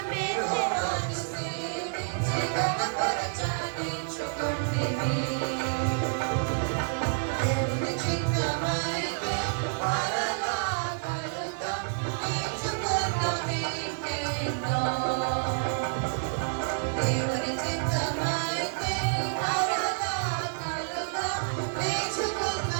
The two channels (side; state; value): left; silent; digital silence